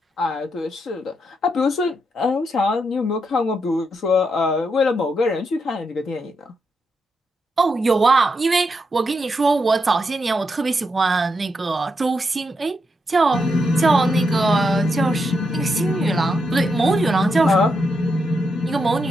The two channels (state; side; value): normal; both; correlation 0.82